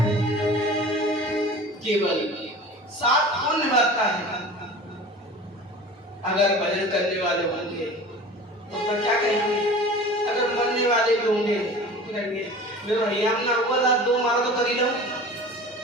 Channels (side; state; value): both; normal; correlation 0.39